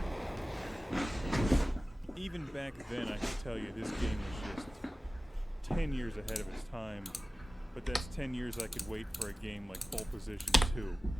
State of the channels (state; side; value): normal; both; correlation 0.96